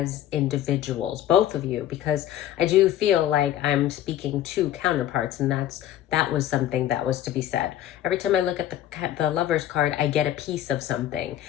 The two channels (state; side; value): quieter; right; 12.1 dB